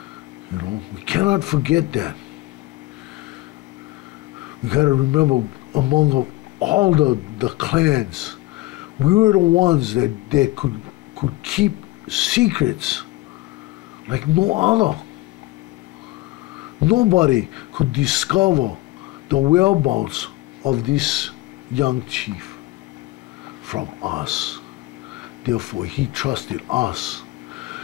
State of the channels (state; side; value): quieter; right; 18.8 dB